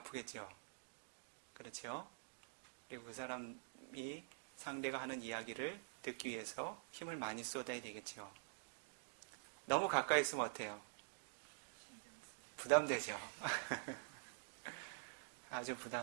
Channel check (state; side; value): silent; left; digital silence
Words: 그렇죠? 그리고 그 사람이 상대가 하는 이야기를 듣기 위해서 힘을 많이 쏟아야 되겠죠. 너무 가까이 있으면 어때요? 부담되죠. 아주